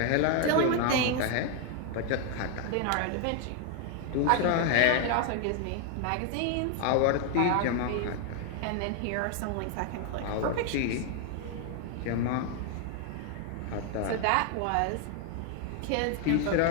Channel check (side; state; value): both; different; correlation 0.00